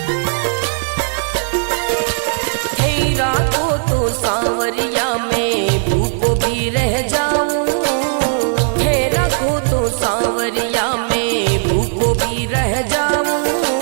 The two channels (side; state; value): left; silent; 63 dB below the other